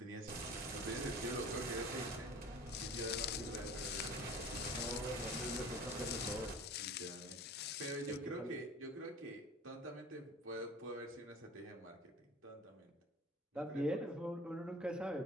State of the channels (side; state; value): both; normal; correlation 0.42